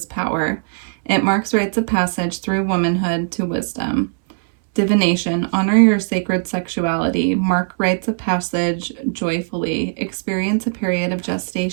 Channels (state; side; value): silent; left; digital silence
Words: power. It marks rites of passage through womanhood to wisdom. Divination, honor your sacred sexuality, mark rites of passage joyfully, experience a period of